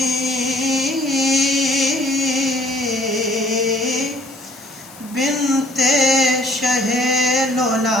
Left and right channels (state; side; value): noise; left; hiss, 20 dB below the sound